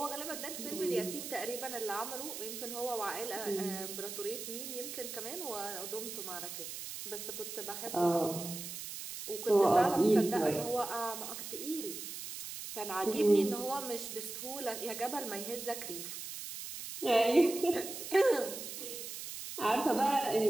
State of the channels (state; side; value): noise; right; hiss, 8 dB below the sound